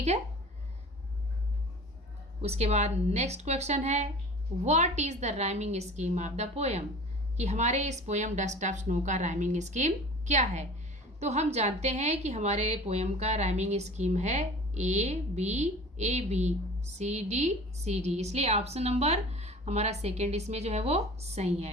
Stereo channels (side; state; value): both; normal; correlation 0.41